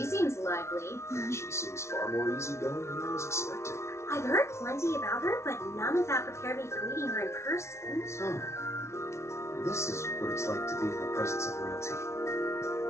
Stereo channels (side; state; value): right; late; 0.13 ms